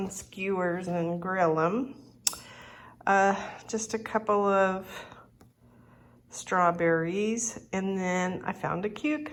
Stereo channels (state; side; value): identical; both; correlation 1.00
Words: skewers and grill them. Just a couple of strawberries, and then I found a